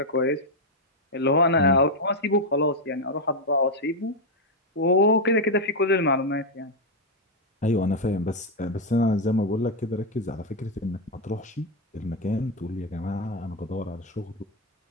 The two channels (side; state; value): both; normal; correlation 0.02